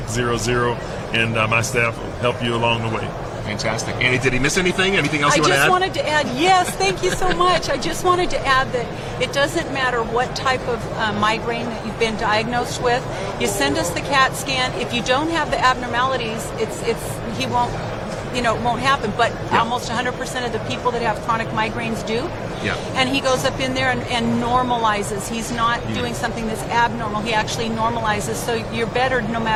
and my staff will help you along the way. Fantastic. Annie, did he miss anything? Anything else you want to add? I just wanted to add, yes, thank you so much. I just wanted to add that it doesn't matter what type of migraine that you've been diagnosed with. You send us the CAT scan. If you don't have the abnormalities, it won't happen. But almost 100% of the people that have chronic migraines do. Yeah. And he goes up in there and normalizes. He's not doing something that's abnormal. He actually normalizes. So you're better no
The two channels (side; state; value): both; identical; correlation 1.00